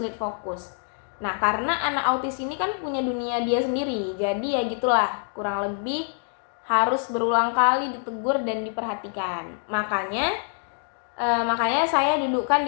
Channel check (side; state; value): right; silent; 61 dB below the other